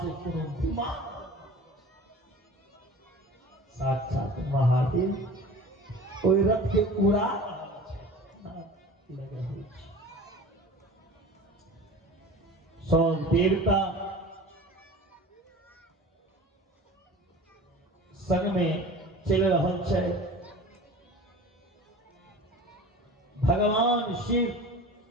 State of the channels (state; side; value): normal; both; correlation 0.39